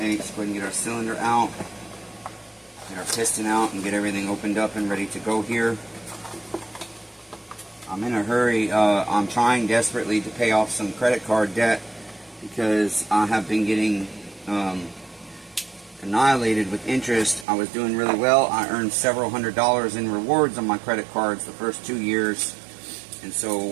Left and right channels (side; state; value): left; drops out; at 17.4 s